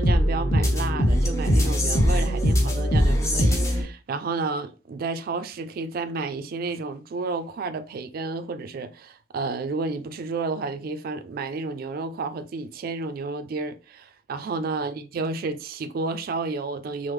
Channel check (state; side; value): normal; both; correlation 0.66